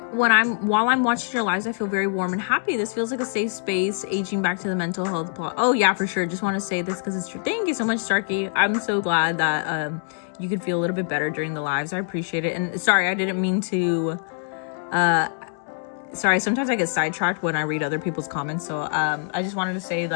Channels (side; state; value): right; silent; digital silence